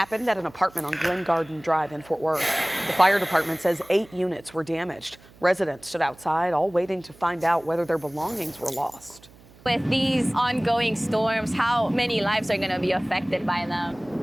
at an apartment on Glen Garden Drive in Fort Worth. The fire department says 8 units were damaged. Residents stood outside, all waiting to find out whether their belongings were lost. With these ongoing storms, how many lives are going to be affected by them?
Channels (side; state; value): right; noise; hum, 25 dB below the sound